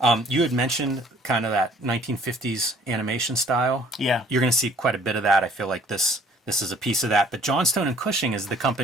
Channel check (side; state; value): both; normal; correlation 0.56